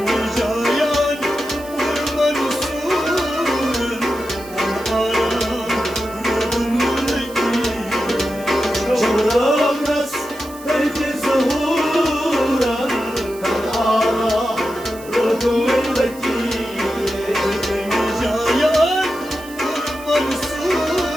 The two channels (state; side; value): noise; right; hiss, 19 dB below the sound